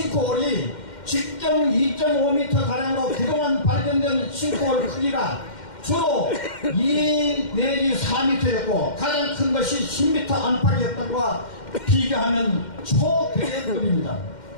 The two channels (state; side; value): late; right; 2.1 ms